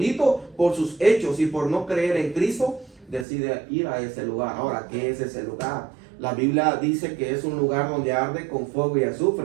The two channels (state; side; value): drops out; left; at 3.2 s